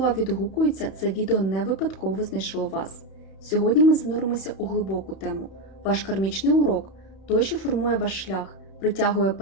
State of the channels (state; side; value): late; right; 31 ms